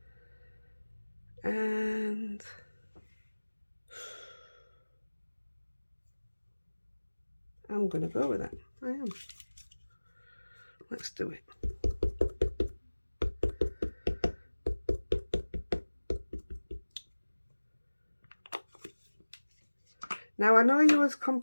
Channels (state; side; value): inverted; both; correlation -1.00